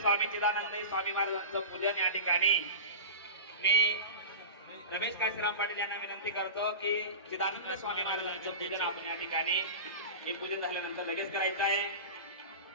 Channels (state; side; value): inverted; both; correlation -0.31